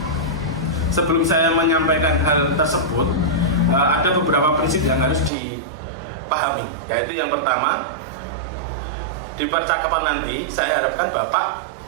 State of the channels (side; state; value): left; drops out; at 5.3 s